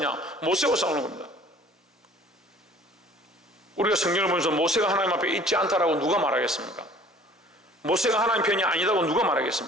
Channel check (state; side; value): normal; both; correlation 0.51